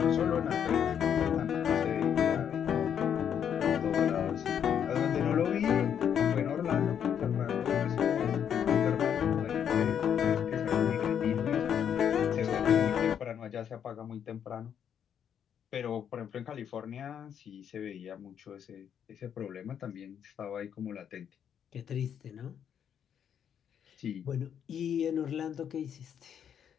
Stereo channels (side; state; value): right; quieter; 8.6 dB